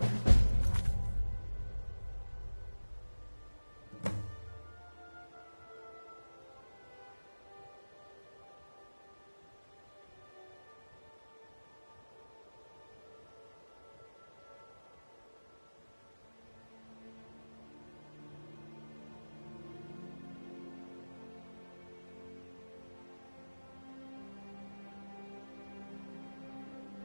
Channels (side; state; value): both; inverted; correlation -1.00